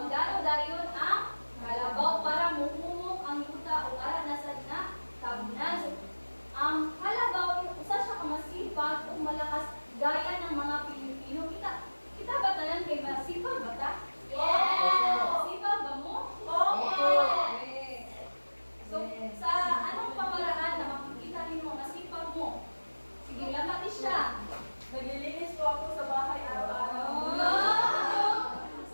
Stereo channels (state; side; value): inverted; both; correlation -1.00